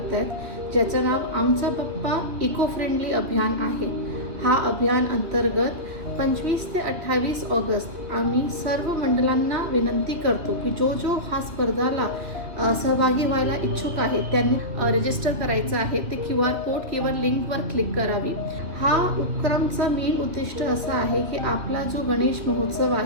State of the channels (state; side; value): late; left; 2.4 ms